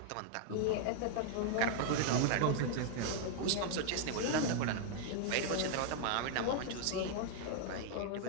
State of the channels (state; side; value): different; both; correlation -0.01